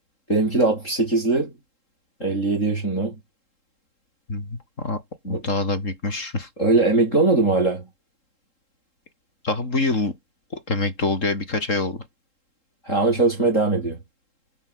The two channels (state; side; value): late; right; 3.7 ms